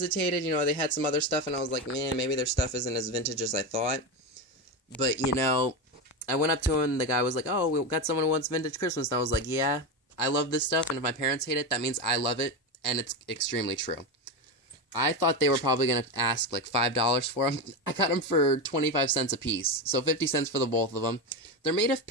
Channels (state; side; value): normal; both; correlation 0.16